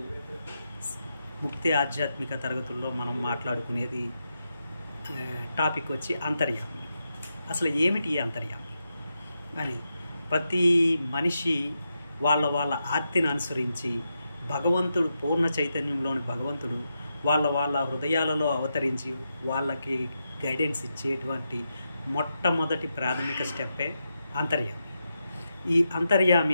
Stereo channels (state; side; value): inverted; both; correlation -0.86